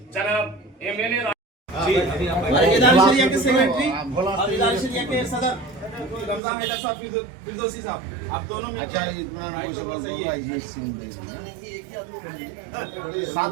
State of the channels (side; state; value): left; drops out; at 6.4 s